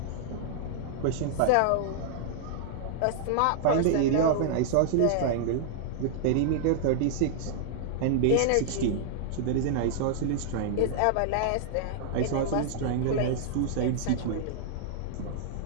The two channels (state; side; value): different; both; correlation -0.01